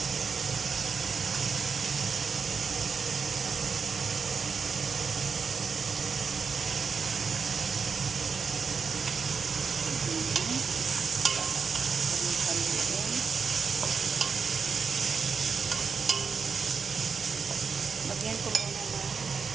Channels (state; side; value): quieter; left; 5.6 dB